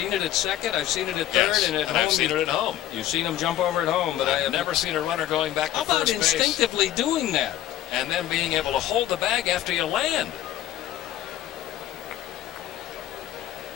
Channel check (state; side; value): quieter; right; 12.7 dB